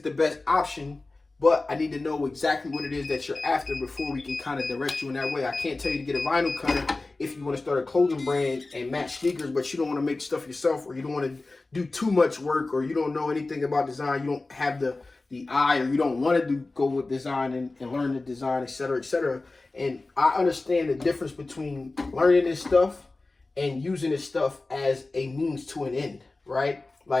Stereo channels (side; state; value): right; quieter; 3.3 dB